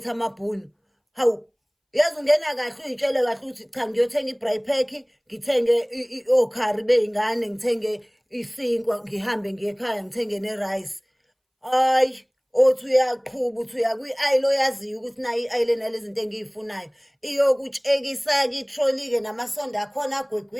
amabhunu. Hawu, yazi ungena kahle uy'tshele kahle ukuthi cha ngiyothenga i-braai pack, ngithenge okhari bey'ngane, ngithenge isinkwa, ngihambe ngiye ekhaya ngithenge ne-rice. Hayi, othi uyaqhuba uthi uya kwi-aisle oyaziyo ukuthi nayo i-aisle enalezi zinto engiy'funayo. Iyokutshekisa-ke itroli-ke namasondo akhona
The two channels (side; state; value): both; identical; correlation 1.00